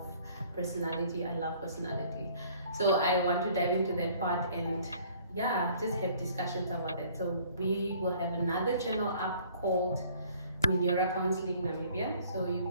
personality. I love personality. So I want to dive into that part and just have discussions about it. So we will have another channel up called Minyora Counseling Namibia, so you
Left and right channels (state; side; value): inverted; both; correlation -0.56